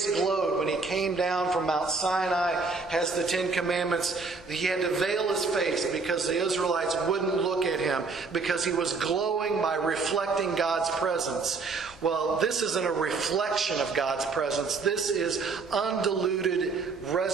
glowed when he came down from Mount Sinai, has the Ten Commandments. He had to veil his face because the Israelites wouldn't look at him because he was glowing by reflecting God's presence. Well, this isn't a reflection of God's presence. This is undiluted,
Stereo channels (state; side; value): quieter; left; 4.3 dB